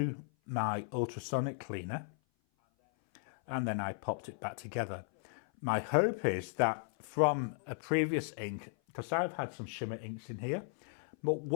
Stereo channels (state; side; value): silent; right; 54 dB below the other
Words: my ultrasonic cleaner, and then I popped it back together. My hope is that from a previous ink, because I've had some shimmer inks in here, but